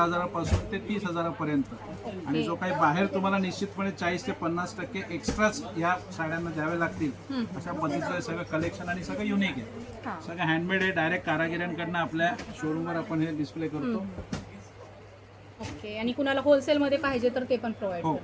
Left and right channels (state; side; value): identical; both; correlation 1.00